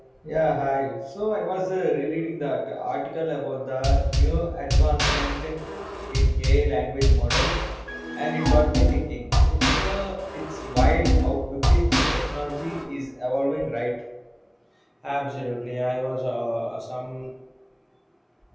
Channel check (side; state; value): both; identical; correlation 1.00